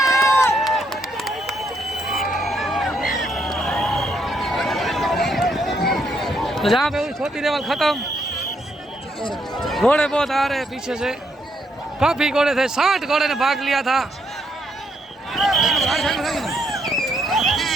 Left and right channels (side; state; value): both; normal; correlation 0.74